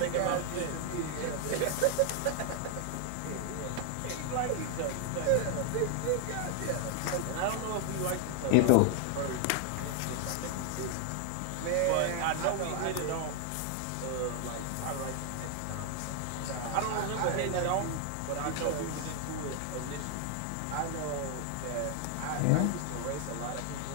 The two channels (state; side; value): different; both; correlation 0.00